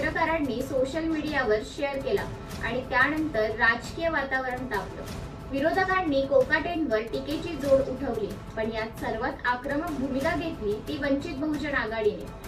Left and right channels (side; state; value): both; identical; correlation 1.00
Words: सोशल मीडियावर शेअर केला आणि त्यानंतर राजकीय वातावरण तापलं। विरोधकांनी कोकाटेंवर टीकेची जोड उठवली, पण यात सर्वात आक्रमक भूमिका घेतली ती वंचित बहुजन